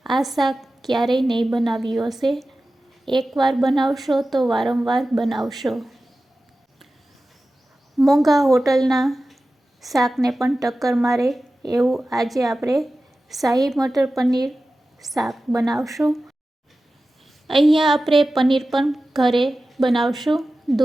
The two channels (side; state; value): both; normal; correlation 0.95